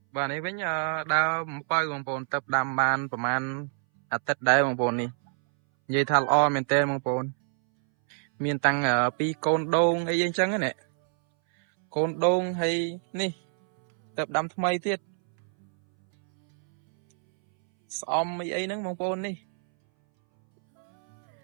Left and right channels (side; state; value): left; silent; 61 dB below the other